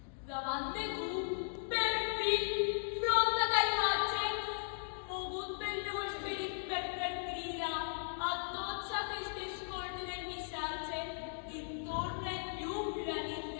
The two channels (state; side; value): silent; right; digital silence